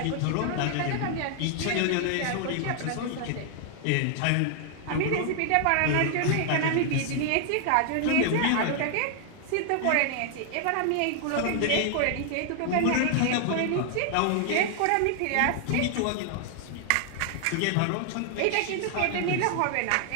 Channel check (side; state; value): both; different; correlation 0.00